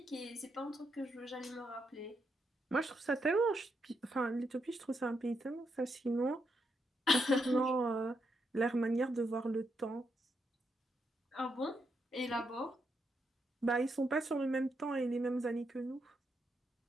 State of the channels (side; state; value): both; normal; correlation 0.80